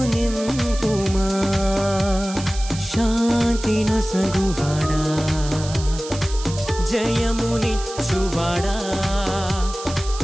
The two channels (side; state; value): right; noise; hiss, 12 dB below the sound